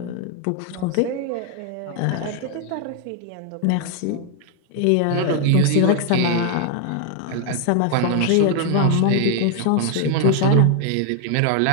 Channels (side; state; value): both; different; correlation 0.00